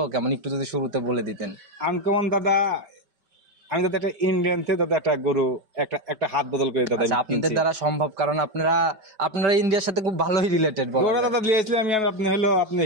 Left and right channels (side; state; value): left; late; 5.1 ms